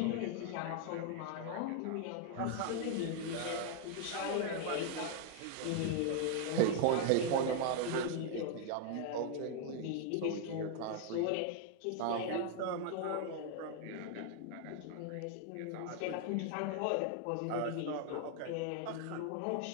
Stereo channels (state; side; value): different; both; correlation 0.00